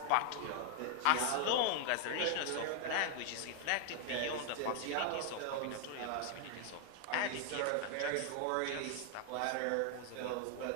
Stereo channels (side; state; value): both; different; correlation 0.00